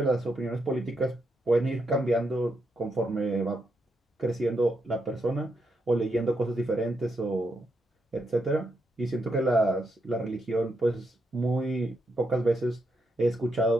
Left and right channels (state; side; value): normal; both; correlation 0.81